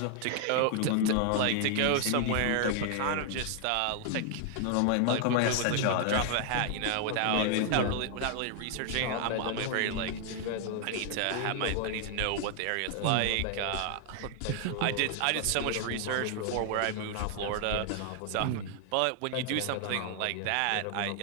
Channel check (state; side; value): different; both; correlation 0.00